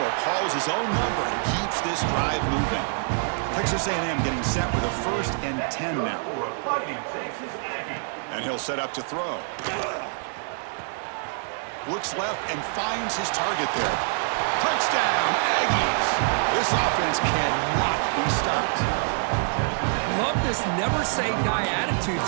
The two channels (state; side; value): silent; left; 61 dB below the other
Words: calls his own number and keeps this drive moving. Texas A&M getting set with a 1st and 10 now. And he'll set up to throw. Looks left and finds his target there. Touchdown, Aggies! This offense cannot be stopped. Love this never-say-die attitude